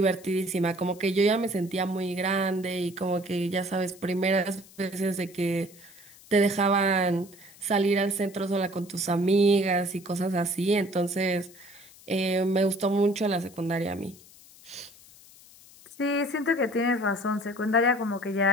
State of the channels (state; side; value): noise; left; hiss, 23 dB below the sound